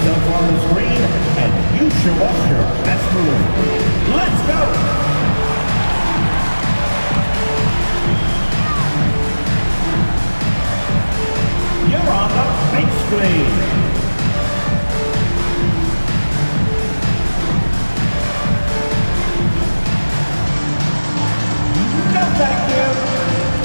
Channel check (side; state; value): both; inverted; correlation -1.00